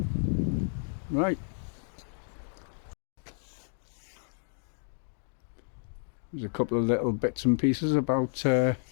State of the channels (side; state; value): right; silent; digital silence